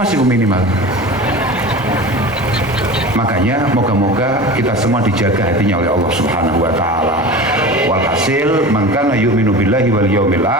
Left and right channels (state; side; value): normal; both; correlation 0.33